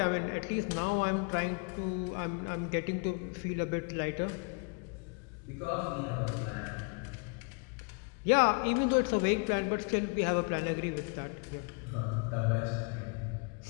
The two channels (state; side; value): quieter; right; 35.3 dB